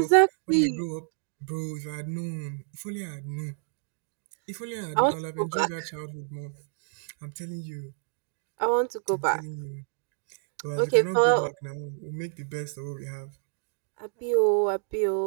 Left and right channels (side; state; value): left; silent; digital silence